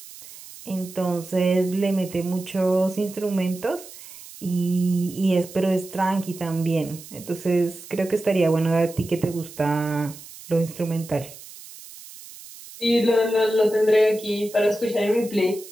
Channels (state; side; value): noise; right; hiss, 17 dB below the sound